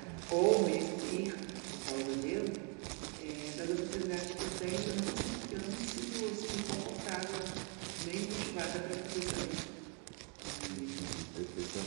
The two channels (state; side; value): quieter; left; 37.5 dB